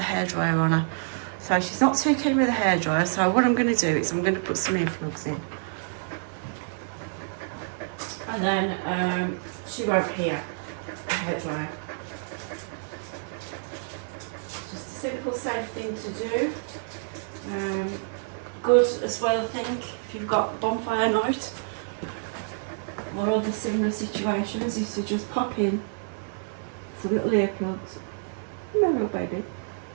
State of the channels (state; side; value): silent; left; 60 dB below the other